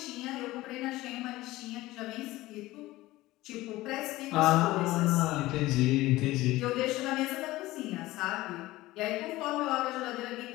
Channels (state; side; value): quieter; right; 18.0 dB